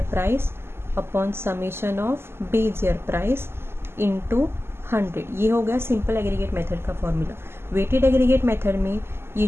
price upon summation of base year price into 100। ये हो गया simple aggregate method का formula. Weighted aggregate method में ये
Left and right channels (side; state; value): left; late; 0.12 ms